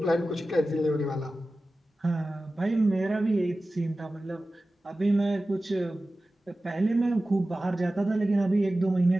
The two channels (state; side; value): normal; both; correlation 0.95